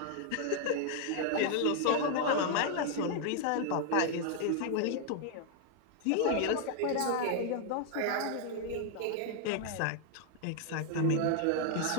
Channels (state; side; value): different; both; correlation 0.00